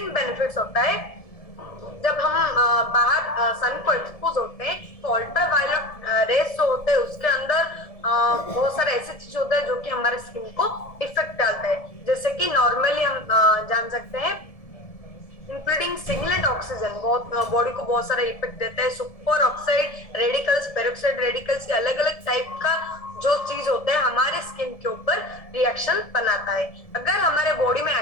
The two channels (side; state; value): right; late; 1.7 ms